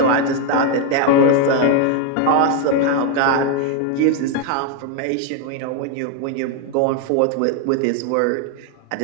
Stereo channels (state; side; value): different; both; correlation 0.01